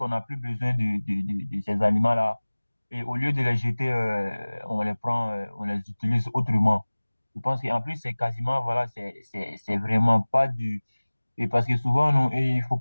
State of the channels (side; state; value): both; inverted; correlation -1.00